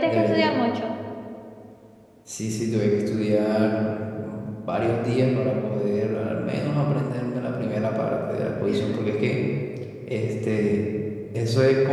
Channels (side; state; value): both; identical; correlation 1.00